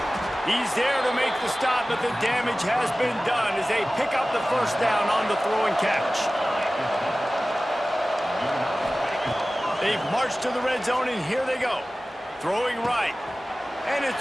He's there to make the stop, but the damage has been done as they pick up the first down on the throw and catch. They've marched to the red zone, and here they go. Throwing right. And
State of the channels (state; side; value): normal; both; correlation 0.97